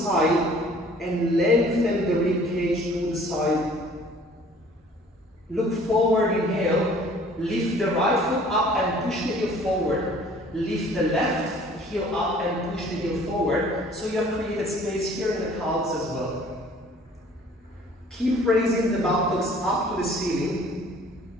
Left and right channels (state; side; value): normal; both; correlation 0.53